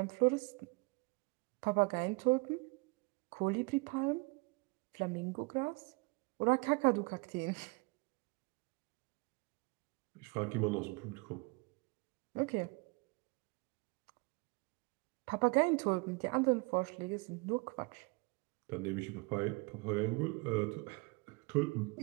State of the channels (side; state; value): left; quieter; 28.6 dB